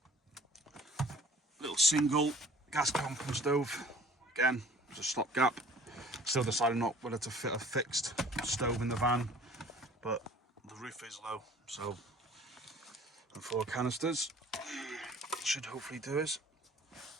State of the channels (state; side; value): normal; both; correlation 0.50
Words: Little single gas pumping stove. Again, it's a stopgap. Still deciding not whether to fit a fixed stove in the van, but the roof is low, so and 4 canisters should hopefully do us.